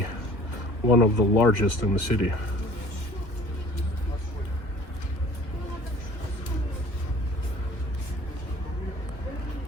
one of the largest in the city.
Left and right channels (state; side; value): late; right; 2.3 ms